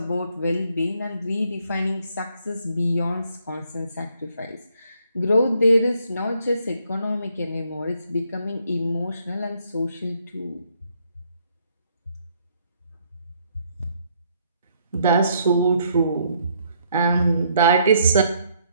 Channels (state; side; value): inverted; both; correlation -0.69